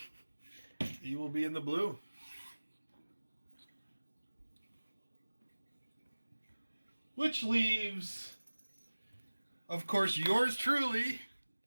He will be in the blue. Which leaves, of course, yours truly.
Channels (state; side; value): inverted; both; correlation -1.00